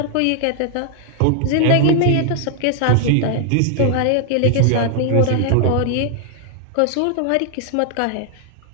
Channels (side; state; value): both; different; correlation 0.00